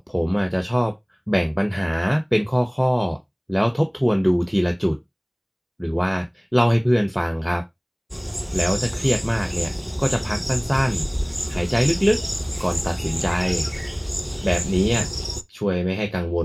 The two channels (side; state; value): both; identical; correlation 1.00